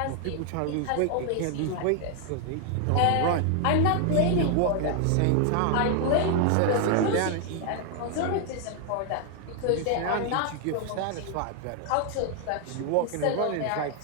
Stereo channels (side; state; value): both; different; correlation 0.00